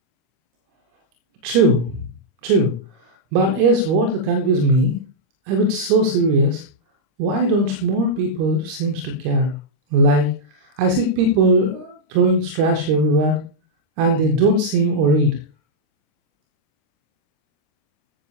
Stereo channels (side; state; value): left; late; 26 ms